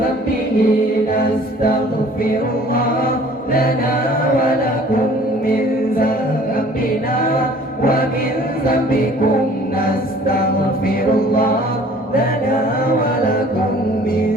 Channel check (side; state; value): both; normal; correlation 0.51